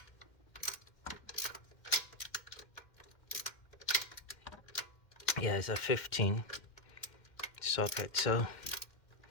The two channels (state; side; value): late; right; 2.1 ms